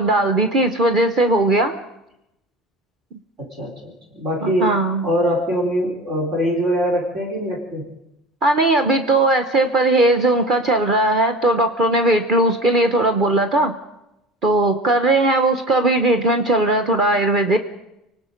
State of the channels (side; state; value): both; normal; correlation 0.34